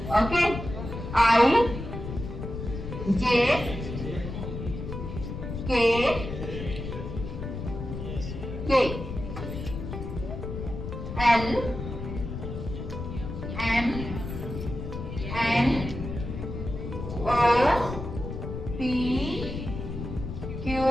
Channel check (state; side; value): noise; left; rumble, 7 dB below the sound